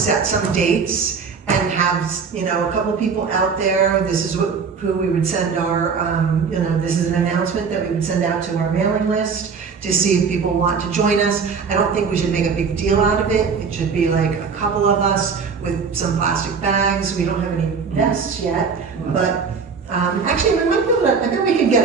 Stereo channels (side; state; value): left; quieter; 5.6 dB